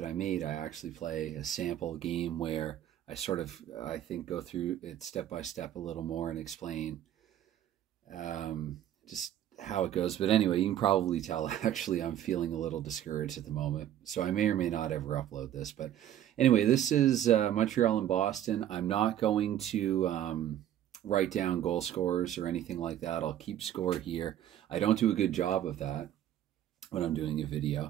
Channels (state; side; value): quieter; left; 11.5 dB